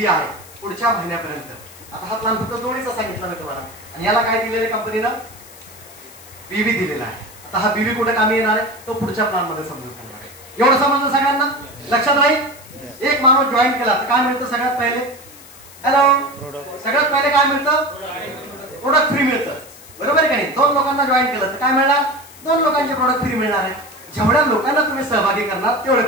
आहे पुढच्या महिन्यापर्यंत. आता हा प्लान फक्त जोडीचा सांगितला मी तुम्हाला आणि याला काय दिलेलं आहे कंपनीनं? बीवी दिलेला आहे. आता हा बीवी कुठे कामी येणार आहे तो पुढच्या प्लान मध्ये समजून सांगणार आहे. एवढं समजलं सगळ्यांना? लक्षात राहील. एक माणूस जॉईन केला तर काय मिळतं सगळ्यात पहिले? हॅलो, सगळ्यात पहिले काय मिळतं? प्रोडक्ट फ्री मिळतं. बरोबर आहे का नाही? 2 लोकांना जॉईन केलं तर काय मिळणार? 2 लोकांचे प्रोडक्ट फ्री मिळणार आहे. जेवढ्या लोकांना तुम्ही सहभागी करणार तेवढे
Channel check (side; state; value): left; noise; hiss, 20 dB below the sound